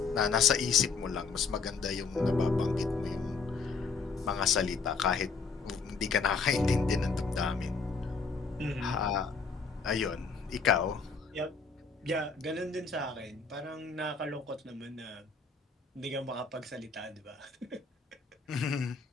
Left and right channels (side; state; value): right; quieter; 4.8 dB